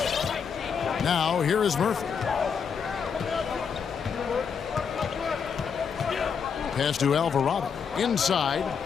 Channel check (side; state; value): right; quieter; 6.6 dB